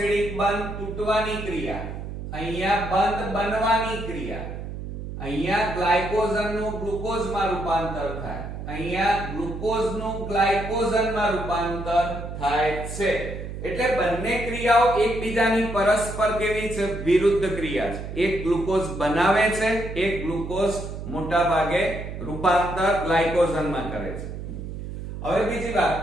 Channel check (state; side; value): noise; right; hum, 8 dB below the sound